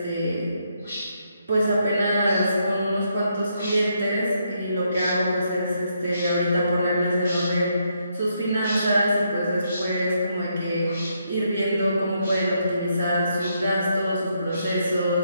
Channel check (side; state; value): both; inverted; correlation -0.77